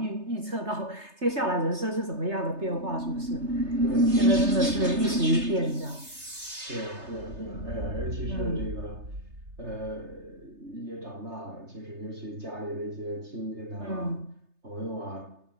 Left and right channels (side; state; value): left; late; 3.3 ms